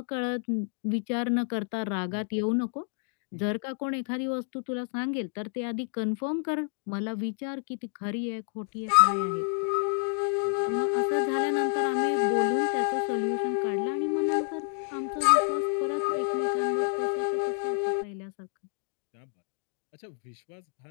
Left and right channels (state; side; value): silent; right; 58 dB below the other